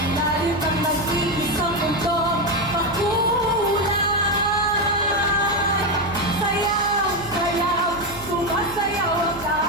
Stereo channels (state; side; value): noise; right; hum, 16 dB below the sound